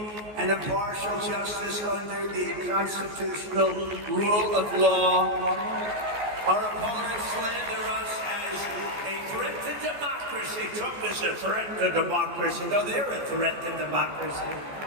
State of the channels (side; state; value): left; late; 14 ms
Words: and impartial justice under the constitutional rule of law. Our opponents slander us as a threat to democracy. Trump is a threat to democracy. No, they're a threat to democracy.